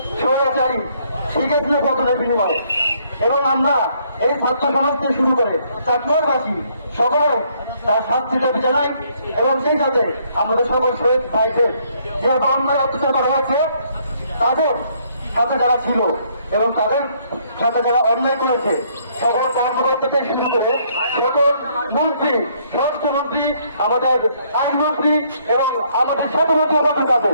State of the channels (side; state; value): both; inverted; correlation -0.67